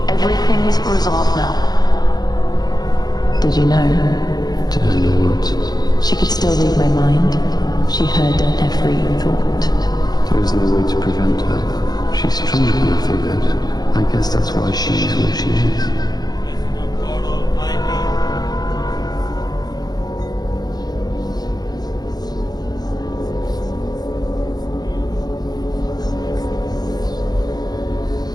Everything's resolved now. Did you know? Did I know what? She could still read my mind. She heard every thought. There is no way to prevent her. She's stronger than I figured. I guess that's why she is where she is.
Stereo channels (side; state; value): right; late; 0.19 ms